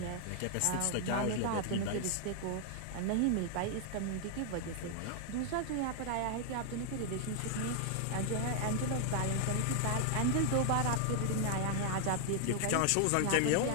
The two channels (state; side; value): different; both; correlation 0.00